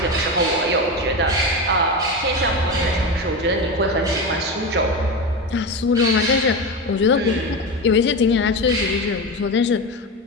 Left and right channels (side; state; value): both; normal; correlation 0.20